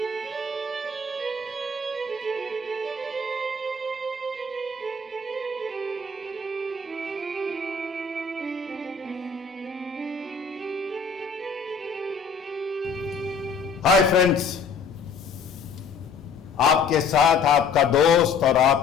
friends, आपके साथ आपका दोस्त और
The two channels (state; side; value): quieter; right; 4.7 dB